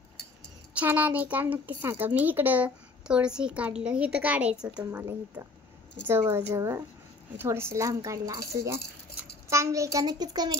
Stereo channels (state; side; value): quieter; right; 3.4 dB